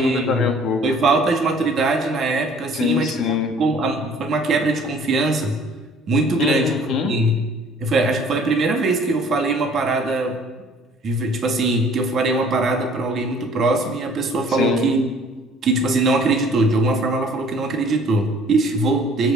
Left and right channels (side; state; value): both; normal; correlation 0.54